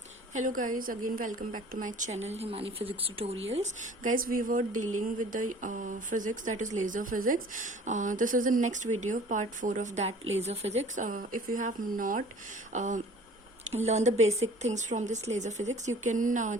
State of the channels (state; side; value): normal; both; correlation 0.49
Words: Hello guys, again welcome back to my channel Himani Physics Tutorials. Guys, we were dealing with the physics, that is laser physics. This is the next video, part 4 of that laser physics. If you have not learned the basic things from this laser physics, you can